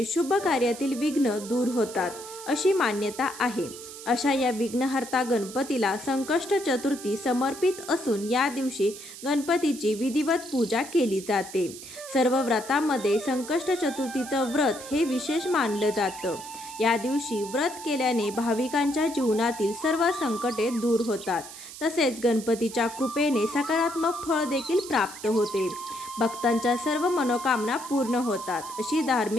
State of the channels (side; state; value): right; noise; hiss, 14 dB below the sound